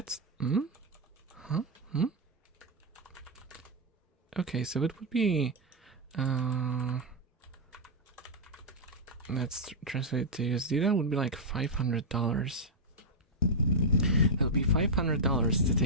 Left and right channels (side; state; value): both; normal; correlation -0.04